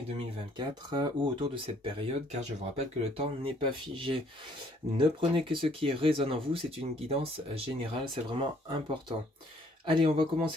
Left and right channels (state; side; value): normal; both; correlation 0.63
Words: 2024 ou autour de cette période car je vous rappelle que le temps n'est pas figé. Ne prenez que ce qui résonne en vous, c'est une guidance générale, c'est vraiment important. Allez, on va